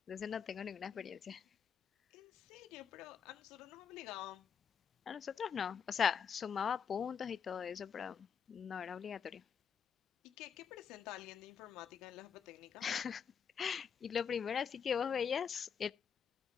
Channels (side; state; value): right; quieter; 7.1 dB